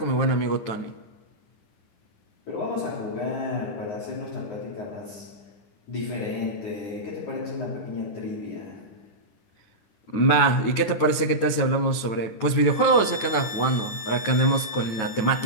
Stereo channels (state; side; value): late; right; 9.3 ms